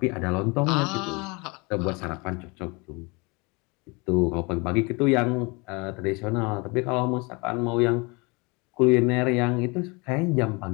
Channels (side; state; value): right; quieter; 28.2 dB